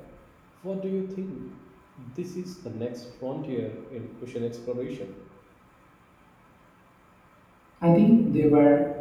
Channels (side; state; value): both; identical; correlation 1.00